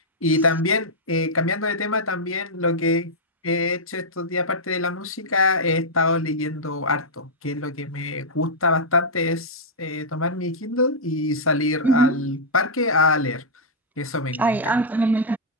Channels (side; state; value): both; normal; correlation -0.08